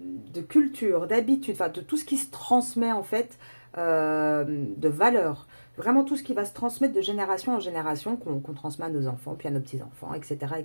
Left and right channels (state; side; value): inverted; both; correlation -1.00